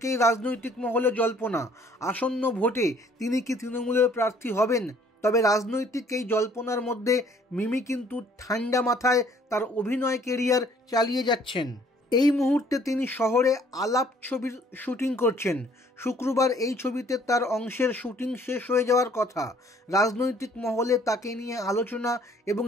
রাজনৈতিক মহলে জল্পনা, আসন্ন ভোটে তিনি কি তৃণমূলের প্রার্থী হবেন। তবে রাজনৈতিক এই জল্পনার মধ্যে মিমি কিন্তু ঠান্ডা মাথায় তার অভিনয় কেরিয়ার চালিয়ে যাচ্ছেন। এই মুহূর্তে তিনি শহরে আলাপ ছবির শুটিং করছেন। শুক্রবার এই ছবিতে তার অংশের শুটিং শেষ হয়ে যাওয়ার কথা। রাজনৈতিক মহলে তাকে নিয়ে আলোচনা এবং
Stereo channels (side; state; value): both; normal; correlation 0.59